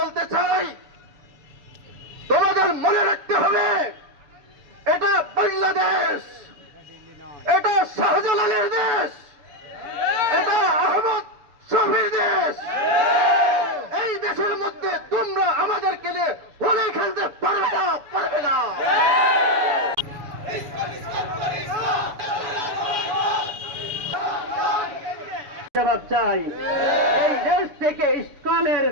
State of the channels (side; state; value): left; late; 7.0 ms